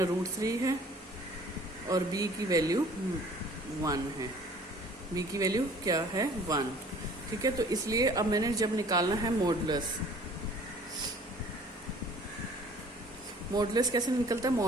है, और b की वैल्यू 1 है। b की वैल्यू क्या है? 1। ठीक है, तो इसलिए अब मैंने जब निकालना है मॉडुलस, मॉडुलस कैसे निकलता है?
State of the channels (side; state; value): both; normal; correlation 0.52